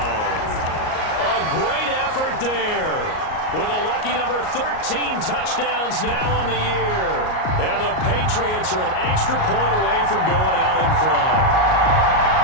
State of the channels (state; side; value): late; right; 38 ms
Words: A great effort there. With a lucky number 13 touchdowns now on the year. And the Patriots are an extra point away from going out in front.